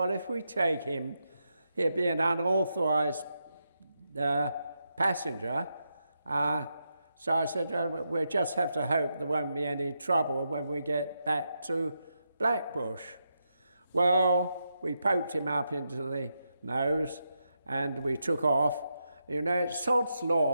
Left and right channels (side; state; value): both; inverted; correlation -0.84